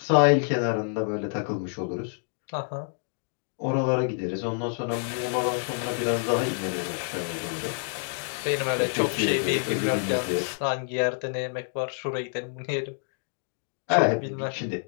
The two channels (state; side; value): silent; right; digital silence